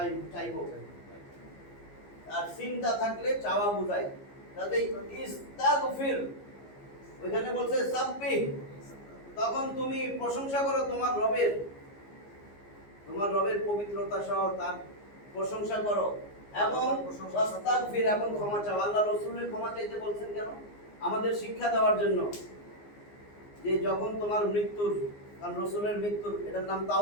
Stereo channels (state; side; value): late; right; 15 ms